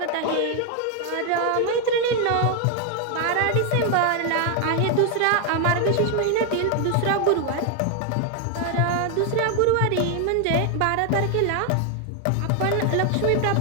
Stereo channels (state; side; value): different; both; correlation 0.00